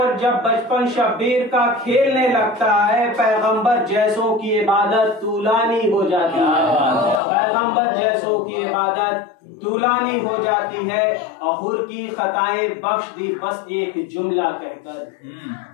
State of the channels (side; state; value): right; drops out; at 7.2 s